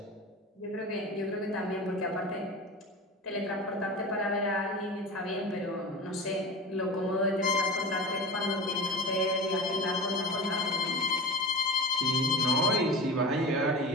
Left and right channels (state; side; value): normal; both; correlation 0.30